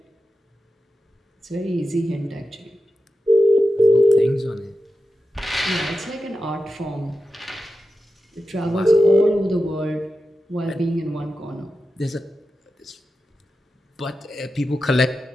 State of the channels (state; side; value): normal; both; correlation 0.91